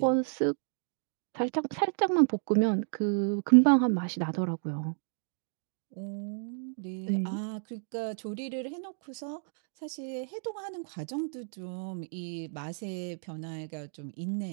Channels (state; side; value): silent; left; 57 dB below the other